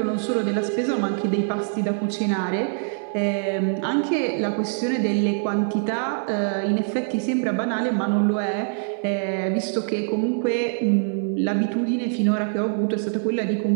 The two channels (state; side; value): silent; left; 60 dB below the other